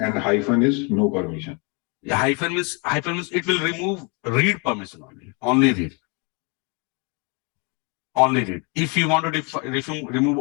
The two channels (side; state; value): right; quieter; 32.5 dB